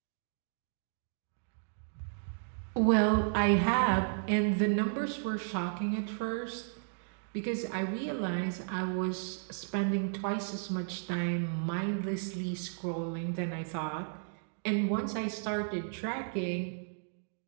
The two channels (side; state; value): left; silent; digital silence